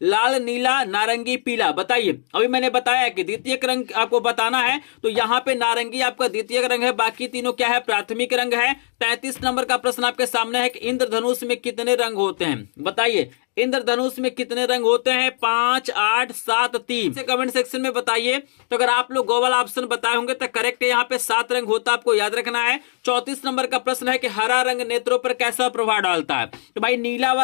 लाल, नीला, नारंगी, पीला। बताइए अभी मैंने बताया कि द्वितीय रंग आपको बताना है, तो यहाँ पे नारंगी आपका द्वितीय रंग है, बाकी तीनों क्या है? प्राथमिक रंग है। 33 नंबर का प्रश्न आपके सामने है कि इंद्रधनुष में कितने रंग होते हैं? बताइए इंद्रधनुष में कितने रंग होते हैं? 5, 8, 7, 3 से कमेंट सेक्शन में बताइए। तो अगर आप लोग गो वाला ऑप्शन बताए होंगे तो करेक्ट है, यहाँ पे 7 रंग होता है, आपको याद रखना है। 34 नंबर का प्रश्न है कि हरा रंग नेत्रों पर कैसा प्रभाव डालता है? तो भाई नीला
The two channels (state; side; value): silent; right; digital silence